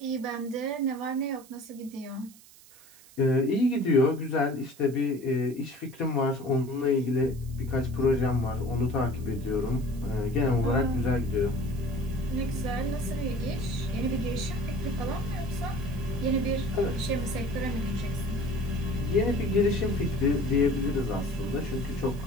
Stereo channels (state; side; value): noise; right; hiss, 23 dB below the sound